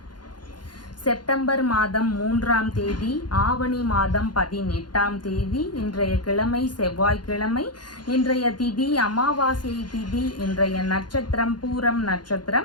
செப்டம்பர் மாதம் 3ஆம் தேதி, ஆவணி மாதம் 18ஆம் தேதி. இன்றைய கிழமை செவ்வாய்க்கிழமை. இன்றைய திதி அமாவாசை திதி. இன்றைய நட்சத்திரம் பூரம்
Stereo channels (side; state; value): right; late; 0.71 ms